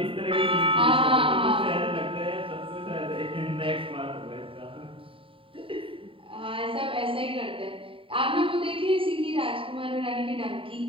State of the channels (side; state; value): left; late; 0.26 ms